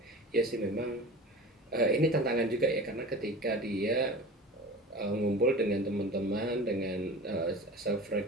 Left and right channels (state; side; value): normal; both; correlation 0.35